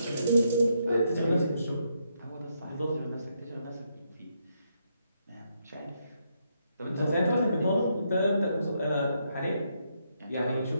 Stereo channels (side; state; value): both; inverted; correlation -0.78